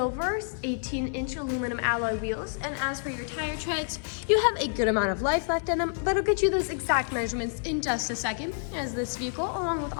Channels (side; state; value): right; silent; 59 dB below the other